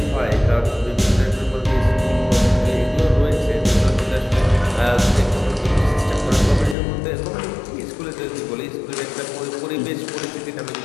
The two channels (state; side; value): drops out; right; at 6.8 s